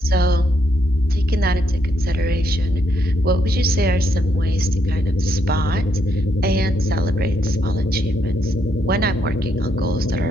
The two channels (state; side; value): normal; both; correlation 0.76